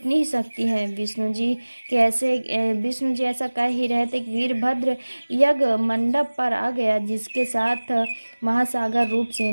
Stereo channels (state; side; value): inverted; both; correlation -1.00